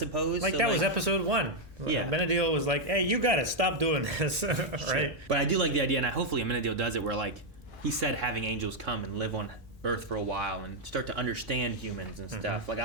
Like, so, that was episode 1. Yeah. Amenadiel was like, hey, you got to stop doing this, right? Sure. But I do like the idea, and hopefully Amenadiel does it where, like, he said having angels come and live on Earth for a while and start to understand humans and stuff. Like, I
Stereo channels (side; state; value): both; normal; correlation 0.00